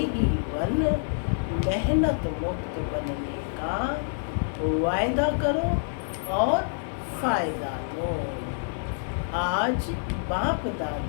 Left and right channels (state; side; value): silent; right; 60 dB below the other